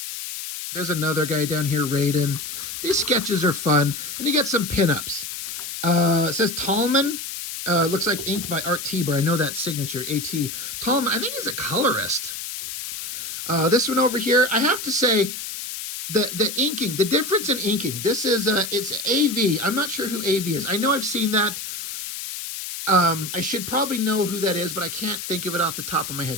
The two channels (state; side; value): noise; left; hiss, 7 dB below the sound